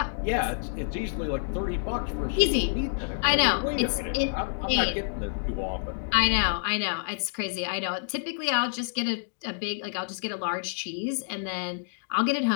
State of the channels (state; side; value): silent; right; digital silence